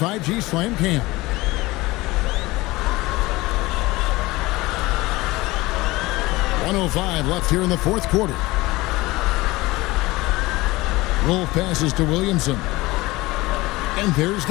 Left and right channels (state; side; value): quieter; right; 20.6 dB